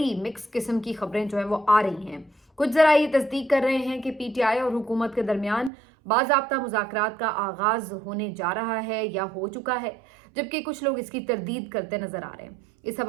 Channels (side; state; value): left; drops out; at 5.7 s